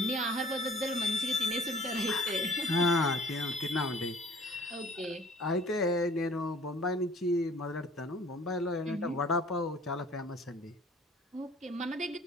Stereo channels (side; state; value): both; normal; correlation 0.52